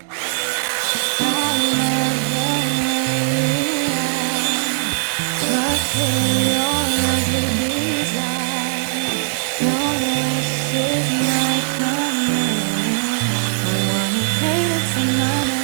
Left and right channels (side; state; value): left; silent; digital silence